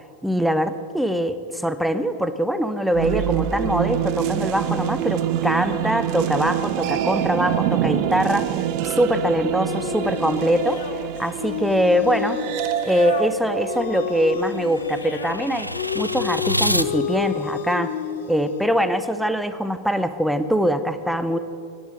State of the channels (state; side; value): normal; both; correlation 0.52